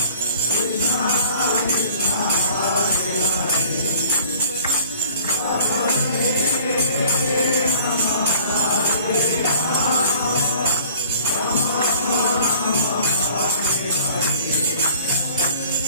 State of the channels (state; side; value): inverted; both; correlation -0.50